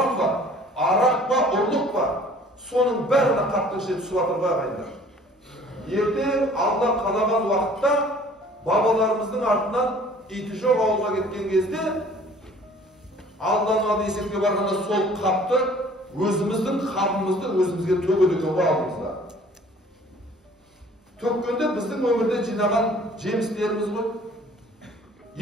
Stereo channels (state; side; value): normal; both; correlation 0.52